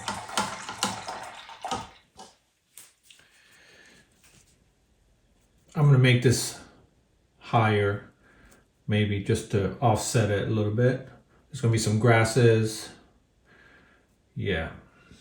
I'm gonna make this higher, maybe just to offset it a little bit. There's gonna be some grasses. Yeah.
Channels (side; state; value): both; identical; correlation 1.00